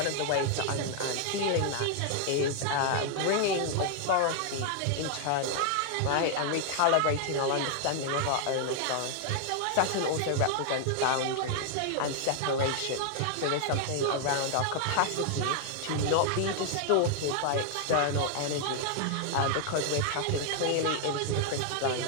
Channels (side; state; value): both; different; correlation 0.00